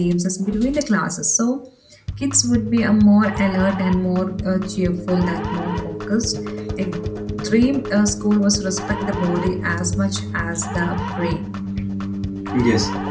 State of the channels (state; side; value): identical; both; correlation 1.00